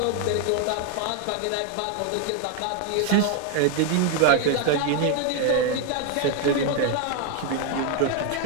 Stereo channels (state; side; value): different; both; correlation 0.01